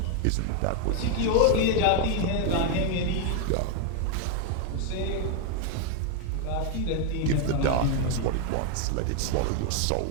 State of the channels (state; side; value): different; both; correlation 0.00